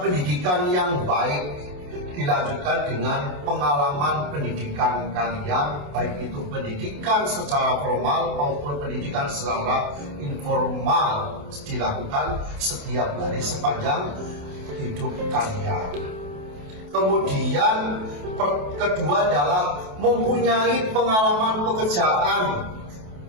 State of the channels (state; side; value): late; left; 28 ms